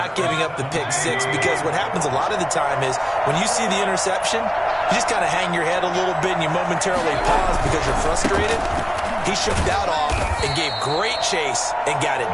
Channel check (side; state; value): both; identical; correlation 1.00